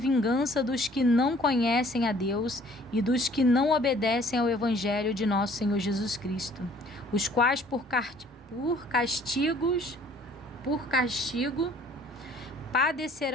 dos que não conhecem a Deus e dos que não obedecem ao Evangelho de nosso Senhor Jesus Cristo, os quais por castigo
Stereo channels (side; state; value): both; normal; correlation 0.56